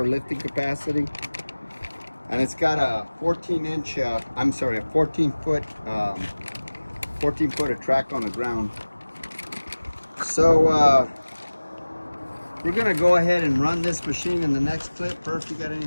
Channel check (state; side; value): inverted; both; correlation -1.00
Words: lifting capacity. And it's got a 14 foot of track on the ground. So we're gonna go ahead and run this machine in the next clip. Perf, you got